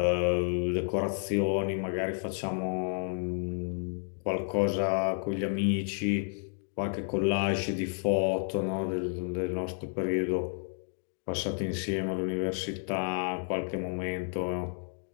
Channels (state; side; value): silent; right; 57 dB below the other